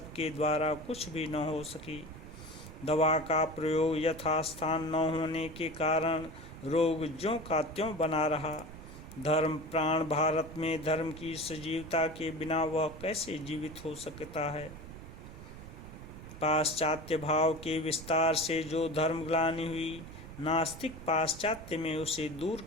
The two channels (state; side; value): noise; right; rumble, 14 dB below the sound